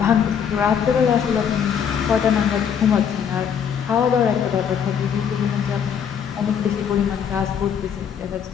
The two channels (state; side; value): quieter; right; 7.8 dB